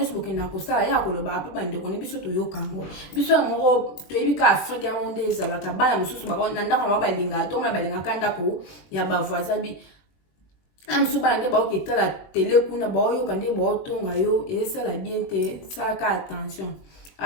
soboke na ko sala ya ko lo ba pa bande ko ne biso to yo kango biso moko to ebika Afrique monde ezalaka bana mususu ba na ndako ba balinga to ma balinga kanda ko ya ba voisin bi amsu ba nde ba o kitala télé kuna ba yo kande ba o tonga yo et ça la bien te ça ka attention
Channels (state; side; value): late; right; 21 ms